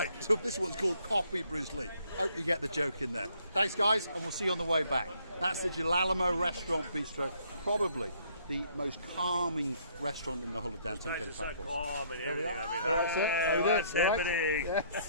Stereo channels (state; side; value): inverted; both; correlation -0.64